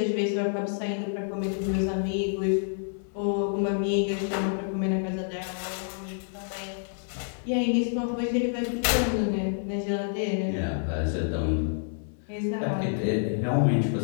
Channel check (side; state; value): right; silent; 59 dB below the other